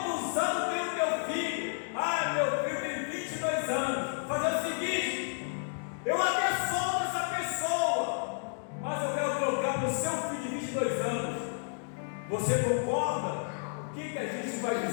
anos tem o teu filho? Meu filho tem 22 anos. Fazer o seguinte: eu até solto essa pessoa, mas eu quero trocar para o seu filho de 22 anos. Você concorda? O que a gente vai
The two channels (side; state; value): right; silent; digital silence